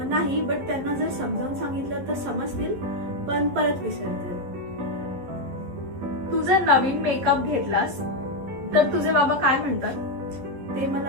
नाही, बट त्यांना जर समजावून सांगितलं तर समजतील, पण परत विसरतील. तू जर नवीन मेकअप घेतलास तर तुझे बाबा काय म्हणतात? ते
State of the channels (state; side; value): late; left; 11 ms